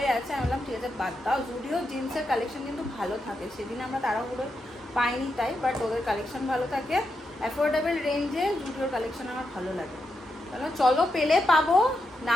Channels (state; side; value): normal; both; correlation 0.85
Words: আছে, আমি বললাম ঠিক আছে বাদ দাও। জুডিও জিন্সের কালেকশন কিন্তু ভালো থাকে, সেদিন আমরা তাড়াহুড়ো পাইনি তাই, বাট ওদের কালেকশন ভালো থাকে। অ্যাফোর্ডেবল রেঞ্জে জুডিওর কালেকশন আমার ভালো লাগে। তাহলে চলো, পেলে পাবো,